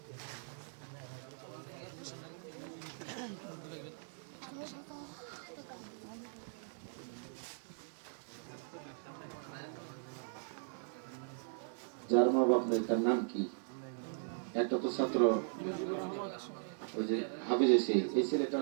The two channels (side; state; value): left; silent; digital silence